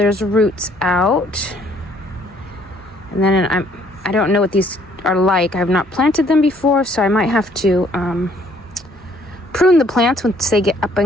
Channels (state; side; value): normal; both; correlation 0.63